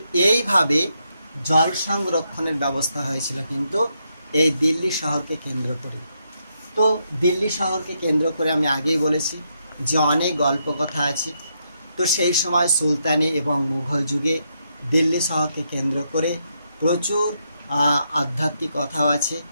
এইভাবে জল সংরক্ষণের ব্যবস্থা হয়েছিল কিন্তু এই দিল্লি শহরকে কেন্দ্র করে। তো দিল্লি শহরকে কেন্দ্র করে আমি আগেই বলেছি যে অনেক গল্প কথা আছে। তো সেই সময় সুলতানি এবং মুঘল যুগে দিল্লি শহরকে কেন্দ্র করে প্রচুর আধ্যাত্মিক কথাও আছে,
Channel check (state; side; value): inverted; both; correlation -0.80